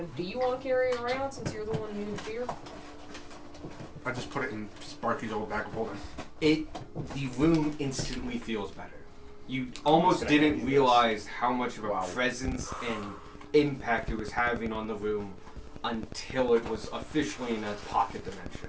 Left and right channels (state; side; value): identical; both; correlation 1.00